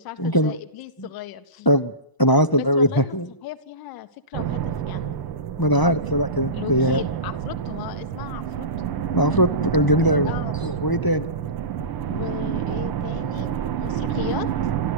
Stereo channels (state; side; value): late; right; 1.0 ms